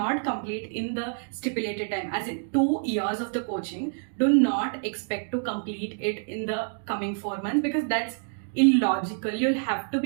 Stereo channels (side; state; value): left; silent; 60 dB below the other